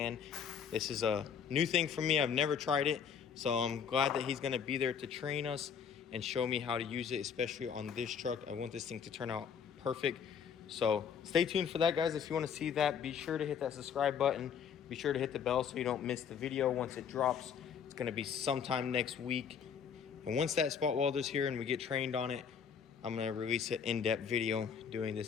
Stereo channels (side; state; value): right; quieter; 7.3 dB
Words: This is a new thing for me. I've never tried it. So I'm glad that he's gonna be there to train us and show me how to use it, especially on this truck. I want this thing to turn out perfect. So stay tuned for that, guys. If you want to see that, be sure to hit that subscribe button. Be sure to hit the bell so you don't miss the video once it drops. It's going to be sometime next week. And once that spot welder's here and we get trained on it, I'm going to release an in-depth video doing